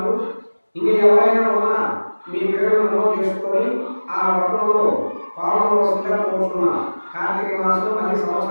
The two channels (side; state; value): both; inverted; correlation -1.00